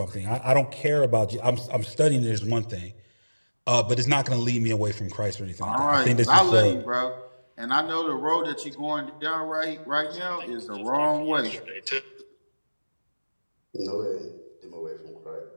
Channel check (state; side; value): inverted; both; correlation -1.00